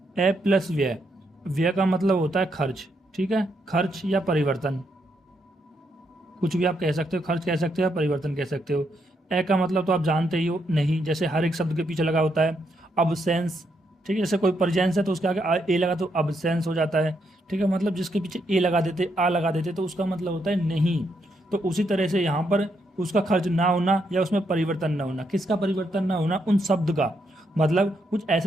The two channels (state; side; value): normal; both; correlation 0.78